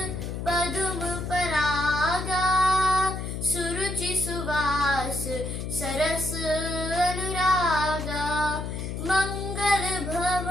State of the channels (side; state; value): left; noise; hum, 5 dB below the sound